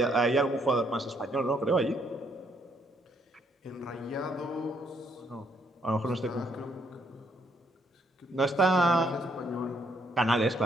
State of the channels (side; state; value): both; normal; correlation 0.70